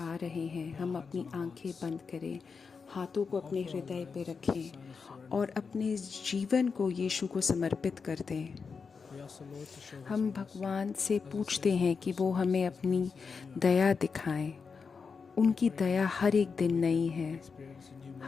आ रहे हैं, हम अपनी आंखें बंद करें, हाथों को अपने हृदय पे रखें और अपने जीवन को यीशु को समर्पित कर दें। हम भगवान से पूछते हैं कि वो हमें अपनी दया दिखाएं। उनकी दया हर एक दिन नई है।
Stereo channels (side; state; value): right; quieter; 5.3 dB